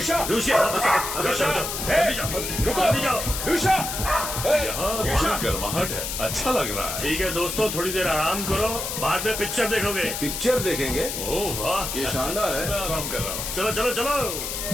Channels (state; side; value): noise; left; hiss, 4 dB below the sound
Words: यहाँ गर्माहट है, अच्छा लग रहा है। ठीक है दोस्तों, थोड़ी देर आराम करो, बाद में पिक्चर देखोगे। पिक्चर देखेंगे? ओह वाह, ये शानदार है। मैं आराम कर रहा हूँ। चलो चलो चलो